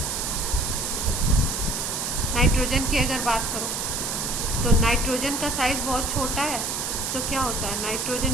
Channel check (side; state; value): right; noise; hiss, 2 dB below the sound